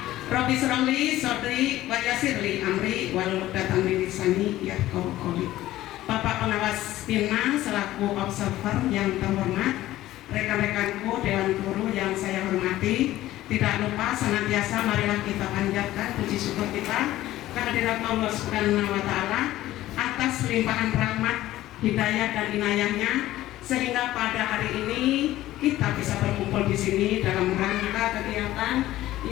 Rabbi shrahli sadri wa yassirli amri wahlul 'uqdatam min lisani yafqahu qawli. Bapak pengawas PINMA selaku observer yang terhormat, rekan-rekanku Dewan Guru yang saya hormati, tidak lupa senantiasa marilah kita panjatkan puji syukur kita kehadirat Allah Subhanahu wa Ta'ala atas limpahan rahmat, hidayah dan inayahnya, sehingga pada hari ini kita bisa berkumpul di sini dalam rangka kegiatan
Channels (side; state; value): right; quieter; 15.1 dB